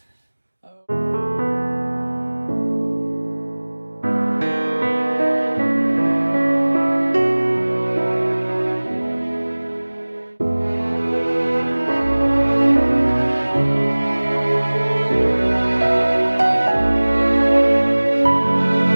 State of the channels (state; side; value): inverted; both; correlation -1.00